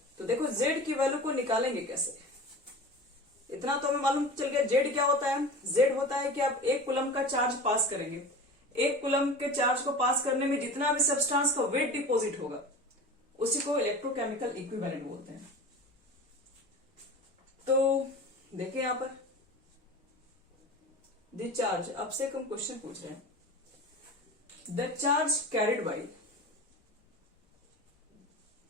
तो देखो जेड की वैल्यू को निकालेंगे कैसे, इतना तो हमें मालूम चल गया। जेड क्या होता है? जेड होता है कि आप 1 कूलम का चार्ज पास करेंगे, 1 कूलम के चार्ज को पास करने में जितना भी सब्सटेंस का वेट डिपॉजिट होगा उसी को इलेक्ट्रोकेमिकल इक्विवेलेंट बोलते हैं। तो देखिए यहां पर द चार्ज, आपसे हम क्वेश्चन पूछ रहे हैं, the charge carried by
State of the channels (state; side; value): normal; both; correlation 0.34